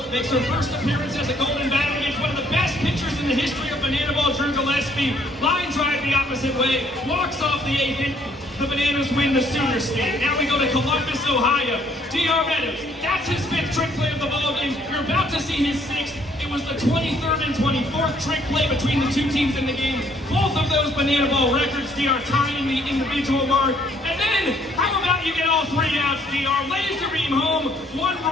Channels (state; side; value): normal; both; correlation 0.65